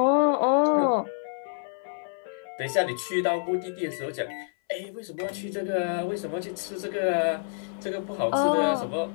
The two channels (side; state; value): right; silent; 60 dB below the other